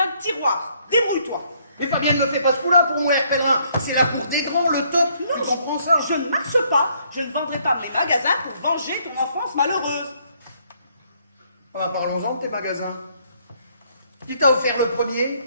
tiroir. Débrouille-toi. Mais Fabienne, ne fais pas ce coup-là pour moi, Air Pèlerin. C'est la cour des grands, le top. Tu comprends ça? Je ne marche pas. Je ne vendrai pas mes magasins pour venger ton enfance malheureuse. Ah, parlons-en de tes magasins. Qui t'a offert le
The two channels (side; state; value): both; inverted; correlation -0.68